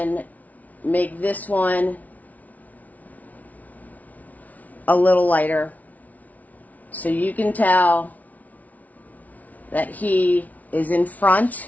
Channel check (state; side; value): late; right; 0.073 ms